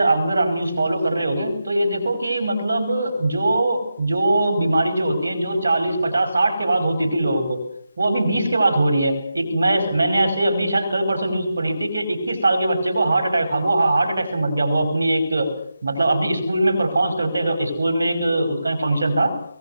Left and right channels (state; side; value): inverted; both; correlation -0.88